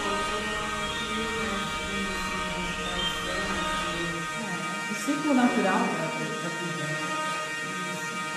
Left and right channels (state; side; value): identical; both; correlation 1.00